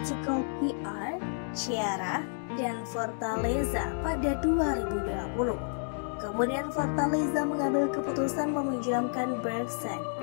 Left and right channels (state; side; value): silent; right; digital silence